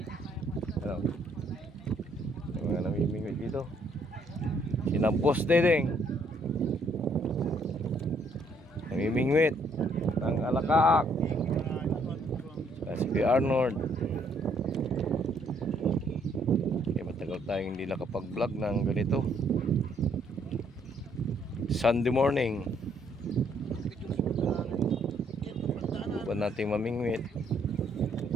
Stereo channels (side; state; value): both; normal; correlation 0.68